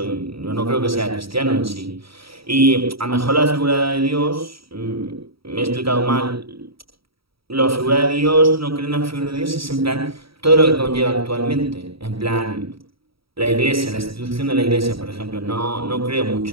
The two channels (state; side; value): late; left; 0.75 ms